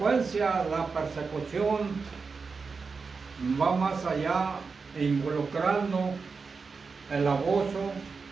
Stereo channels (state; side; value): quieter; left; 4.8 dB